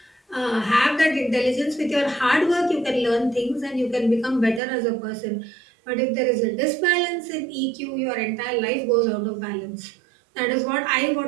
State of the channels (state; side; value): drops out; left; at 4.6 s